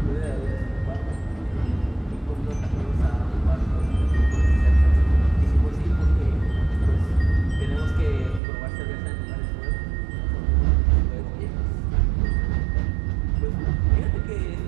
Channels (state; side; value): drops out; left; at 8.4 s